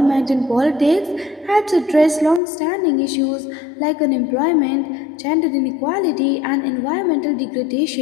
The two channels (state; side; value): drops out; right; at 2.4 s